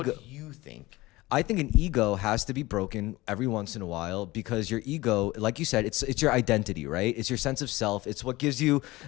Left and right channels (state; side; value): quieter; right; 19.8 dB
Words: do you think? I think an ego has to be broken every once in a while because your ego, like you said, it's your identity, right? It's your sense of self. It's what gives you